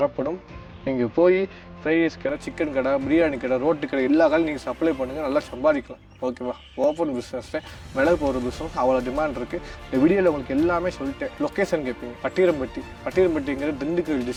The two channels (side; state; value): both; identical; correlation 1.00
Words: நீங்கள் போய் ஃப்ரைட் ரைஸ் கடை, சிக்கன் கடை, பிரியாணி கடை, ரோட்டு கடை எல்லா கடையும் நீங்கள் சப்ளை பண்ணுங்கள். நல்லா சம்பாதிக்கலாம். ஓகேவா? ஓப்பன் பிஸ்னஸில் மிளகு போடுற பிஸ்னஸ் அவ்வளோ டிமாண்ட் இருக்குது. இந்த வீடியோவில் உங்களுக்கு எல்லாமே சொல்லிட்டேன். லொக்கேஷன் கேட்பீங்க. பட்டிரம்பட்டிங்கிறது திண்டுக்கல்